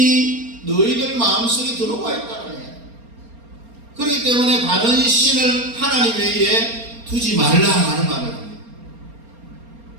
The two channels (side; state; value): left; late; 4.3 ms